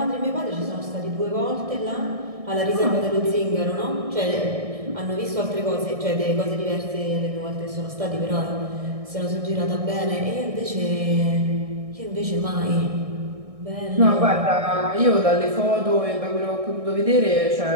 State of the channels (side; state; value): left; late; 1.6 ms